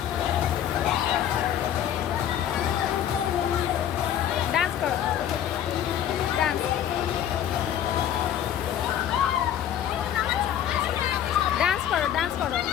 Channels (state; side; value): quieter; right; 10.3 dB